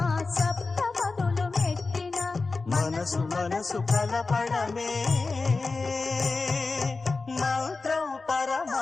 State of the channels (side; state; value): right; quieter; 3.9 dB